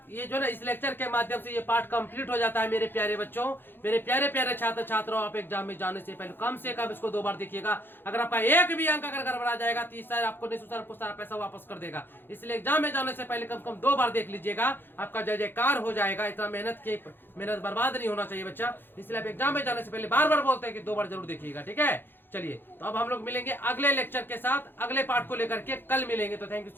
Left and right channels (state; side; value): late; right; 0.10 ms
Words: ये जो ना इस लेक्चर के माध्यम से ये पार्ट कंप्लीट हो जाता है मेरे प्यारे बच्चों, मेरे प्यारे प्यारे छात्र छात्राओं। आप एग्जाम में जाने से पहले कम से कम इसको 2 बार देखिएगा। अगर आपका एक भी अंक अगर गड़बड़ा जाएगा तो सर आपको निःशुल्क सारा पैसा वापस कर देगा। इसलिए एग्जाम में जाने से पहले कम से कम 2 बार देख लीजिएगा, आपका जय जयकार हो जाएगा। इतना मेहनत बर्बाद नहीं होना चाहिए बच्चा। इसलिए आप एग्जाम में जाने से पहले बार बार बोलते हैं कि 2 बार जरूर देखिएगा, ठीक है। चलिए तो अब हम लोग मिलेंगे अगले लेक्चर के साथ, अगले पार्ट को लेकर के कल मिलेंगे। तो थैंक यू